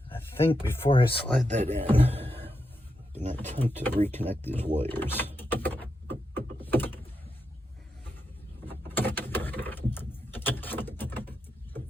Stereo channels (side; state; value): both; normal; correlation 0.85